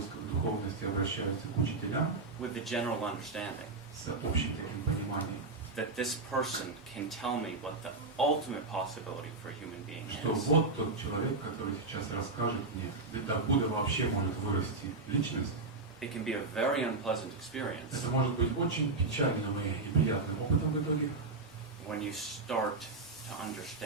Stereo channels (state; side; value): quieter; left; 3.7 dB